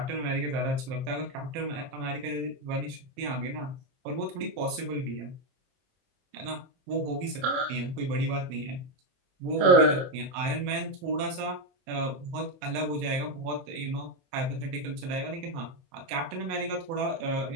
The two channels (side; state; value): left; late; 22 ms